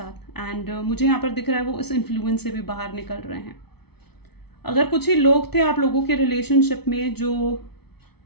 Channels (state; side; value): late; right; 0.98 ms